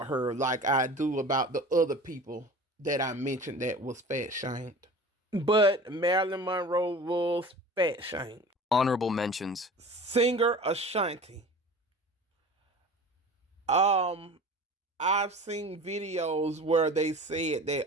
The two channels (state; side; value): normal; both; correlation 0.39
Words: her like I do about the other people that I mentioned that was fat shamed. But Marilyn Monroe was fat shamed. Honorable mentions. Singer Ashanti. I've seen videos where they said